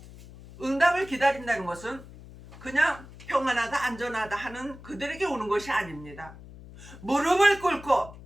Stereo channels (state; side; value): noise; left; hum, 17 dB below the sound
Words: 응답을 기다린다는 것은 그냥 평안하다 안전하다 하는 그들에게 오는 것이 아닙니다. 무릎을 꿇고